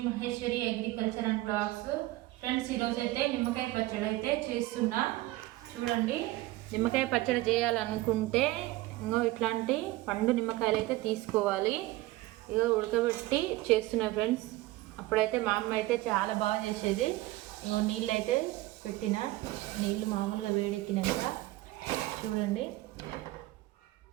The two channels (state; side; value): quieter; left; 18.3 dB